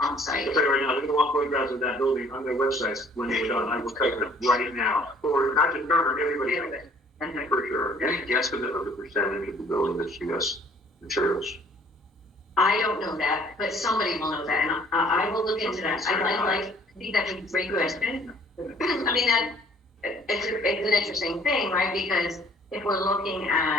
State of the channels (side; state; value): both; normal; correlation 0.57